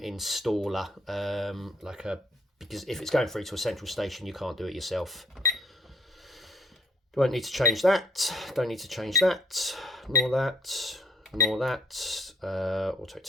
because if it's going through to a central station, you can't do it yourself. Don't need to change that, don't need to change that, nor that. Nor that. Auto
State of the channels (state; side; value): normal; both; correlation 0.66